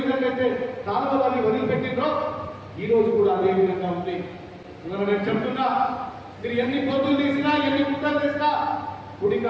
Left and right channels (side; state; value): both; identical; correlation 1.00